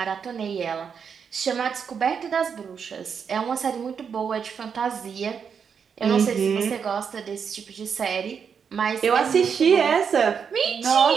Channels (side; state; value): left; quieter; 6.7 dB